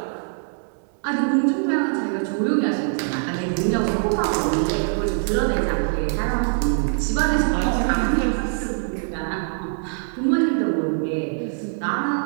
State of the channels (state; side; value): silent; left; digital silence